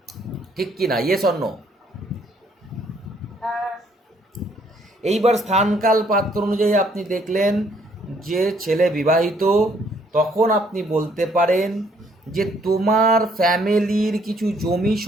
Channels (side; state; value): both; normal; correlation 0.66